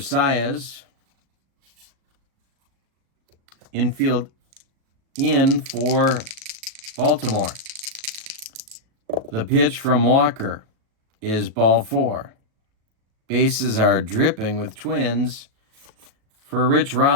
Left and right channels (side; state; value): left; late; 37 ms